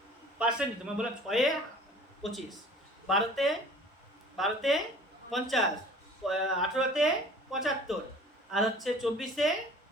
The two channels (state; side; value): normal; both; correlation 0.47